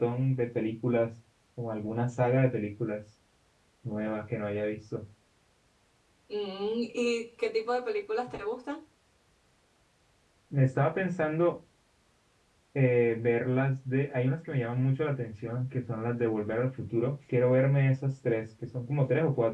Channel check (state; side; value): identical; both; correlation 1.00